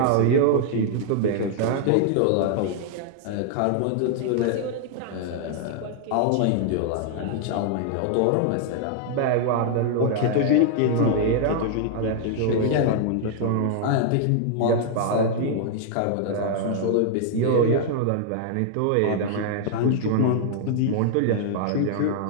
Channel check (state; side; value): different; both; correlation 0.00